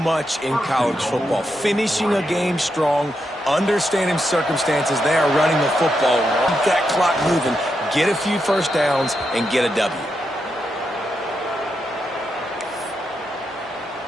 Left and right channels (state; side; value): normal; both; correlation 0.84